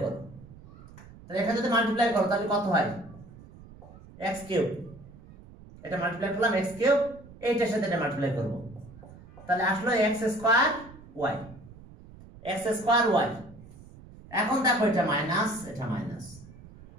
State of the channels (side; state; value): right; noise; rumble, 20 dB below the sound